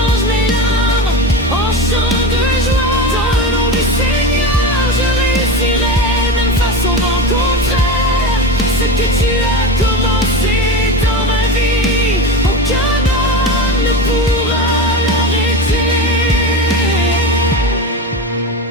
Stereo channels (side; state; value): both; normal; correlation 0.24